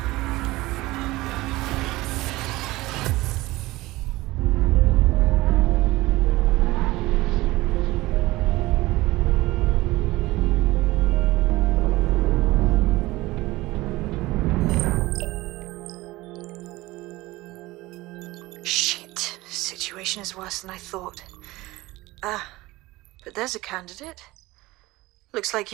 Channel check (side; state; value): left; quieter; 19.4 dB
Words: Is worse than I thought. But there's a candidate. Looks like